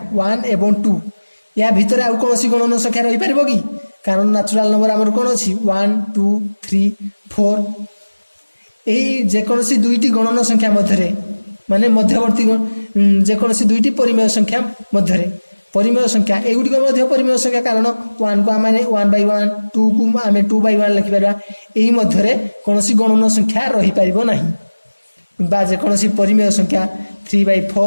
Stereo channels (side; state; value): both; inverted; correlation -1.00